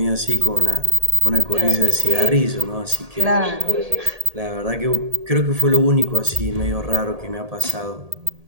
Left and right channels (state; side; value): late; left; 1.8 ms